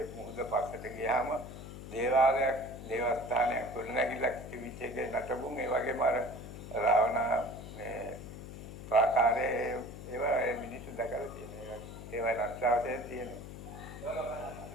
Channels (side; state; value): left; noise; hum, 11 dB below the sound